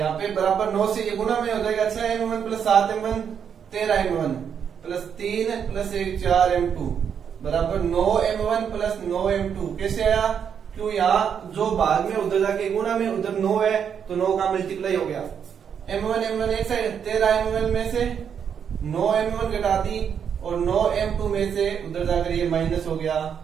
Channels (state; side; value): quieter; left; 7.7 dB